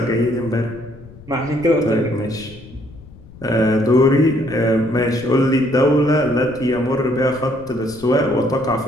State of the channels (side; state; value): left; noise; rumble, 20 dB below the sound